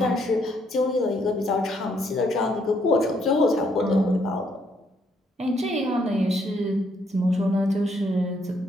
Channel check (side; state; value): both; normal; correlation 0.71